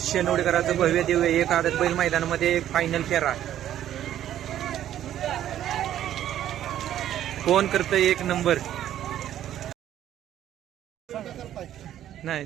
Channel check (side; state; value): left; quieter; 11.5 dB